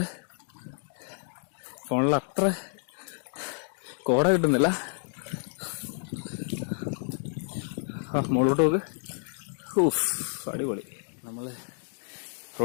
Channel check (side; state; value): right; silent; 58 dB below the other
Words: ഫോണിൽ അത്ര കോട കിട്ടുന്നില്ല. മുകളിലോട്ട് നോക്ക്. അടിപൊളി. നമ്മൾ